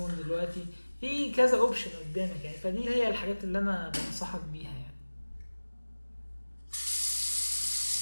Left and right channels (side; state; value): both; inverted; correlation -1.00